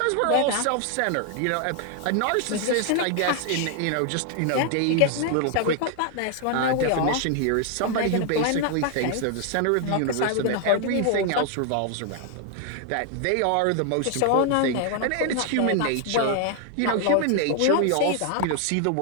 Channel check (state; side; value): different; both; correlation 0.00